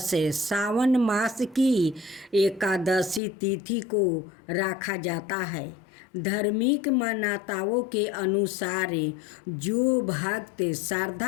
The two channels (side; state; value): right; drops out; at 3.2 s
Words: सावन मास की एकादशी तिथि को रखा जाता है। धार्मिक मान्यताओं के अनुसार जो भक्त